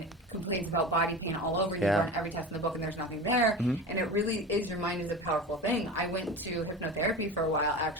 complains about body pain all over and you run every test in the book and there's nothing there. And it really is, your mind is a powerful thing. I went to hypnotherapy for a while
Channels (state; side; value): normal; both; correlation 0.31